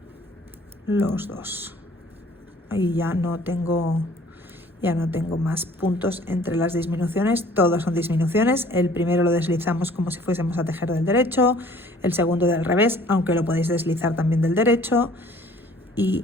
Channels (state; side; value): normal; both; correlation 0.54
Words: los dos. Ahí ya no tengo más puntos entre las disminuciones, todas son disminuciones. El primero lo deslizamos como si fuésemos a tejer del derecho, el segundo del revés, aunque lo podéis deslizar también del derecho, y